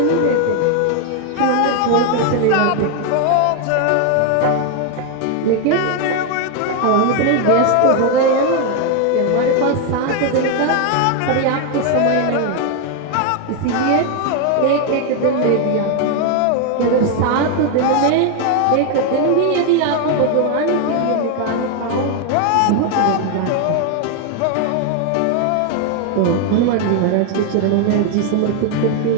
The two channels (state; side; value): different; both; correlation 0.01